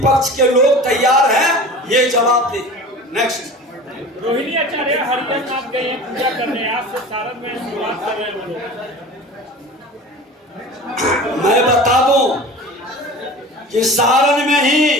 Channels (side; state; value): both; normal; correlation 0.37